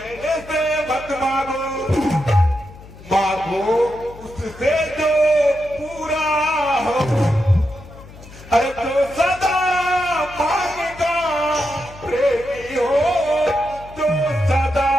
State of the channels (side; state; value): left; noise; hum, 19 dB below the sound